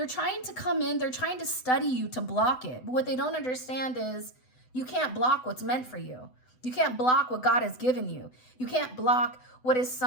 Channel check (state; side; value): late; right; 7.9 ms